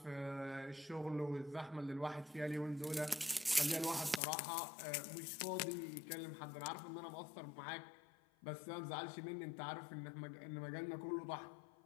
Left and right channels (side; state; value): right; drops out; at 4.2 s